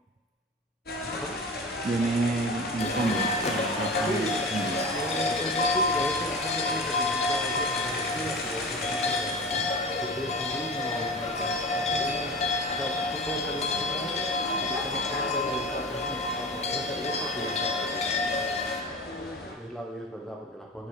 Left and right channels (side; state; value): both; normal; correlation 0.33